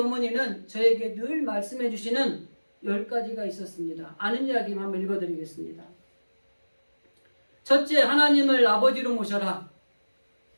저에게 늘 말씀해 주시는 10가지가 있었습니다. 아는 이야기만 한번 읽어드리겠습니다. 첫째, 하나님을 아버지로 모셔라.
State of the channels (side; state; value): both; inverted; correlation -1.00